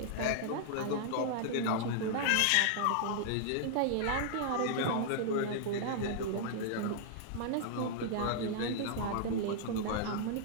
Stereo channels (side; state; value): both; different; correlation -0.01